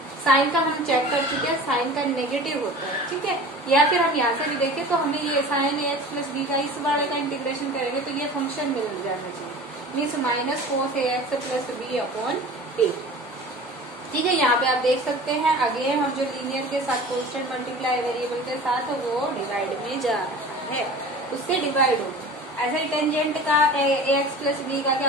साइन का हम चेक कर चुके हैं, साइन का नेगेटिव होता है। ठीक है, या फिर हम यहाँ से भी देखें तो हमें ये साइन ax प्लस b का इस वाले का इंटीग्रेशन करेंगे तो ये फंक्शन मिल जाना चाहिए, means minus cos ax plus b upon a। ठीक है, यहाँ पे आप देख सकते हैं अगेन हम जो लीनियर के साथ कांस्टेंट मल्टीप्लाई वेरिएबल के साथ वो डिवाइड में जा रहा है, उससे डिवाइड हो। ऐसे ही टेंजेंट का ax प्लस b का क्या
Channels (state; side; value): normal; both; correlation 0.39